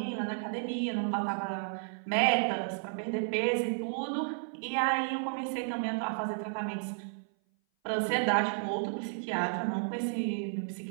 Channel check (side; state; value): left; silent; 56 dB below the other